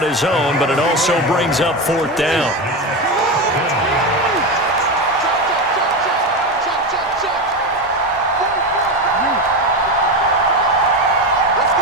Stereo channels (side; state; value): both; normal; correlation 0.17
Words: his own, but it also brings up 4th down.